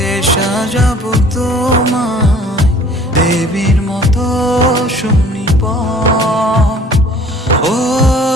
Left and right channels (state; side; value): normal; both; correlation 0.51